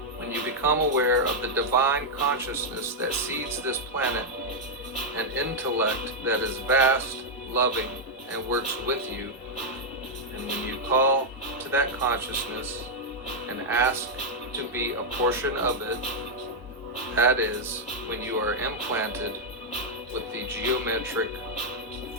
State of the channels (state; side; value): normal; both; correlation -0.03